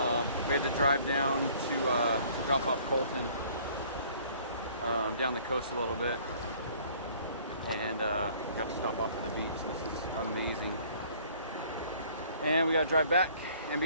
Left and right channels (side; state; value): both; inverted; correlation -0.55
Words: We had to drive down to drop off Colton down the coast a little bit, and got to stop off at the beach. This is amazing. And we got to drive back and